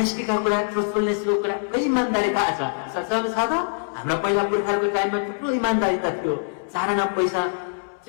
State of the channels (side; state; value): right; silent; 63 dB below the other